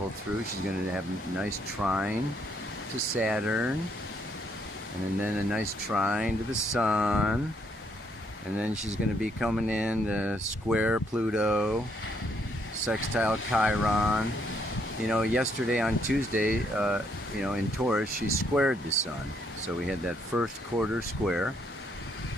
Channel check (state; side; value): normal; both; correlation 0.71